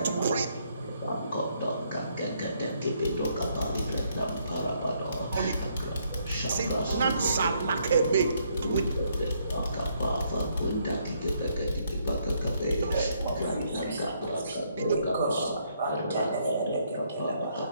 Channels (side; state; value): both; inverted; correlation -0.72